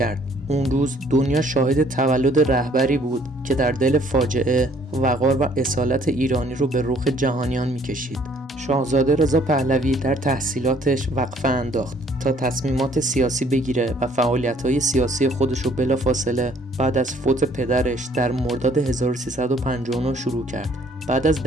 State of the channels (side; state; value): both; normal; correlation 0.61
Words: اون روز دنیا شاهد تولد رهبری بود که در دل فاجعه وقار و اصالت ایرانی رو به رخ جهانیان میکشید. شاهزاده رضا پهلوی در تحصیلاتش وقفه انداخت تا تصمیمات سیاسی بگیره و فعالیت‌های سیاسی خودش رو بلافاصله بعد از فوت پدرش در مرداد 1359 شروع کرد. بعد از